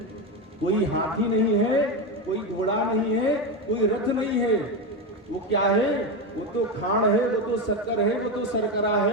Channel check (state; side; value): normal; both; correlation 0.14